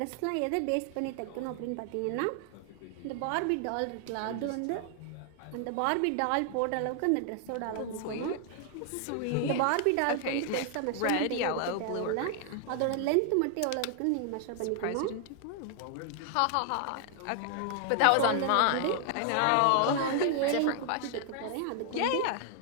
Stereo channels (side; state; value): both; different; correlation 0.00